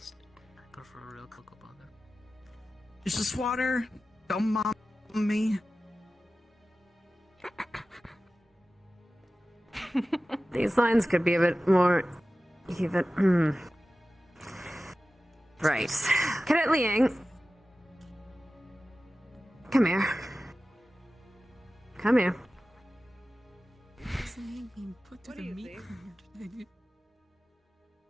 I prefer a real cocoa butter. It's just water. Don't mom me. These lines could be a bit more even. Right. Cadet Liang. Come here. Come here. Put to the meat today.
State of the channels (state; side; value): normal; both; correlation 0.95